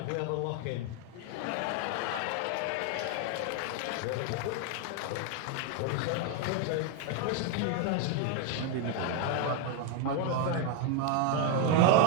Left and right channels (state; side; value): different; both; correlation 0.01